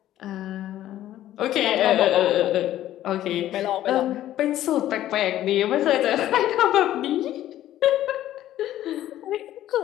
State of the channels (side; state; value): right; quieter; 13.1 dB